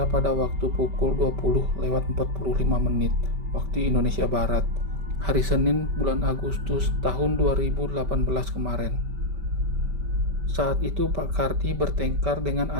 pada waktu pukul 20:45 waktu Indonesia Barat, hari Senin bulan Agustus tahun 2018 kemarin. Saat itu Pak Kardi bertengkar dengan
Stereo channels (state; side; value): late; left; 5.1 ms